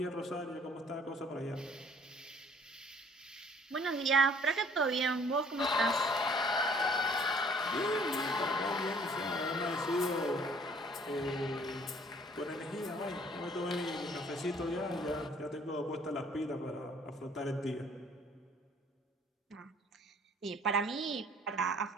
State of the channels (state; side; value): normal; both; correlation 0.57